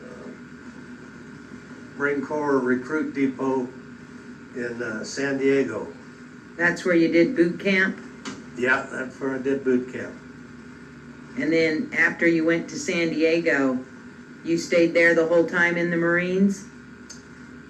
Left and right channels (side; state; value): both; identical; correlation 1.00